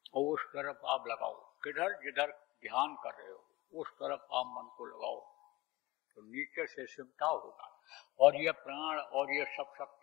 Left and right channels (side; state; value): right; quieter; 20.4 dB